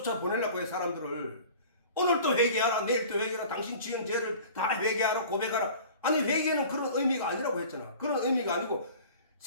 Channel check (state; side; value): inverted; both; correlation -0.44